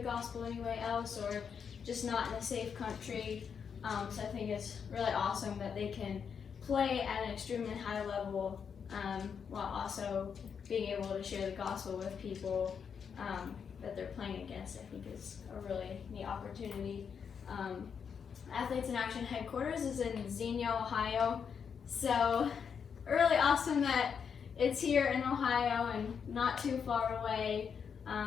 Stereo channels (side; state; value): right; quieter; 6.8 dB